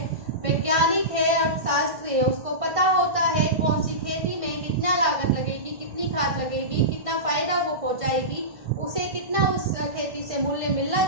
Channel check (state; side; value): late; left; 1.5 ms